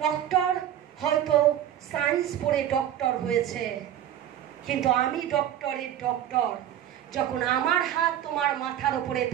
ডক্টর হয়তো সায়েন্স পড়ে ডক্টর হয়েছে, কিন্তু আমি ডক্টরের ডক্টর। যখন আমার হাত তোমার মাথার উপরে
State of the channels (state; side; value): quieter; left; 11.0 dB